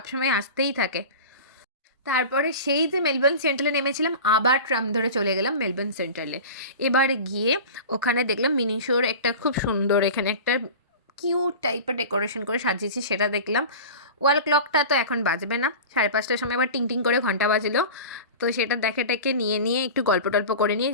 আসতেই থাকে। তারপরে সেই যে মেলবোর্ন সেন্ট্রালে নেমেছিলাম, আবার ট্রাম ধরে চলে গেলাম মেলবোর্ন সেন্ট্রালে। এবার গিয়ে ওখানে দেখলাম মিনিশোর একটা খুব সুন্দর, এখানে একটা কিউট টাইপের ডেকোরেশন করে সাজিয়েছি, সেটা দেখলাম। ওয়াল ক্লকটা তো এখন বাজবে না, 5:30টার সময় আবার টিং করে ঘন্টা বাজলো, তো সেটা দেখে নিয়ে একটু গল্প টল্প করে নিয়ে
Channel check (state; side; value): inverted; both; correlation -0.33